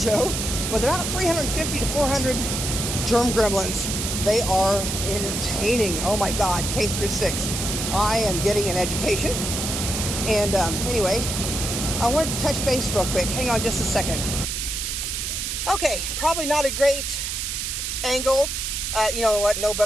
with about 350 to 400 germ gremlins. They are entertaining. Oh my God, K through 6. I am getting an education. And anyway, I wanted to touch base real quick. Hang on just a second. Okay, probably not a great angle. You know what, no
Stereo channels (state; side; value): noise; right; hiss, 3 dB below the sound